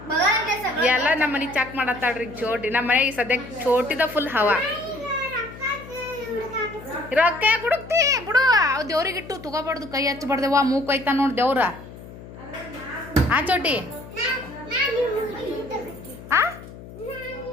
ಎಲ್ಲ ನಮ್ಮ ಮನೆ ಚೆಕ್ ಮಾಡತ್ತಾಳ್ರಿ ಚೋಟಿ. ನಮ್ಮ ಮನೆಗೆ ಸದ್ಯಕ್ಕೆ ಚೋಟಿದ ಫುಲ್ ಹವಾ. ರೊಕ್ಕ ಹುಡುಕ್ತಿ ಬಿಡು. ಅವ್ ದೇವ್ರಿಗಿಟ್ಟು ತಗೋಬಾರ್ದು, ಕೈ ಹಚ್ಚಬಾರ್ದೇವ. ಮೂಕ್ ಐತಾ ನೋಡ್ ದೇವ್ರ. ಆ ಚೋಟಿ ಆ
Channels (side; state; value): left; noise; hum, 16 dB below the sound